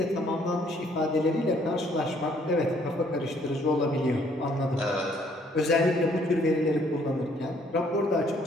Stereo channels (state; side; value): normal; both; correlation 0.64